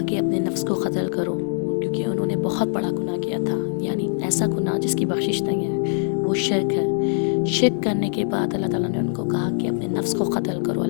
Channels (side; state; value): right; silent; digital silence